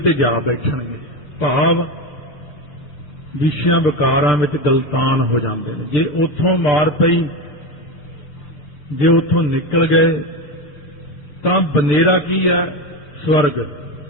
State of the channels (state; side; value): late; right; 7.4 ms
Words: ਜਾ ਬੈਠਣਗੇ। ਭਾਵ ਵਿਸ਼ਿਆਂ ਵਿਕਾਰਾਂ ਵਿੱਚ ਗਲਤਾਨ ਹੋ ਜਾਂਦੇ ਨੇ। ਜੇ ਉੱਥੋਂ ਮਾਰ ਪਈ, ਜੇ ਉੱਥੋਂ ਨਿਕਲ ਗਏ ਤਾਂ ਬਨੇਰਾ ਕੀ ਹੈ? ਸਵਰਗ।